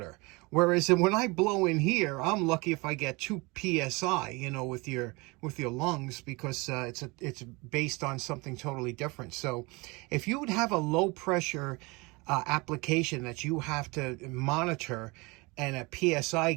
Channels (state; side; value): quieter; left; 25.8 dB